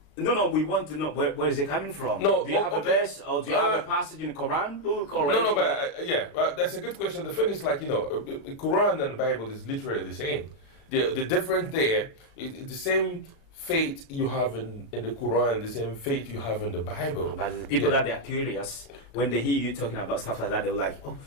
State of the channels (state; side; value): late; right; 36 ms